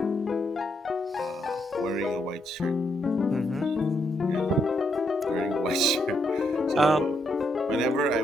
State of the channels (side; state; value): both; normal; correlation 0.77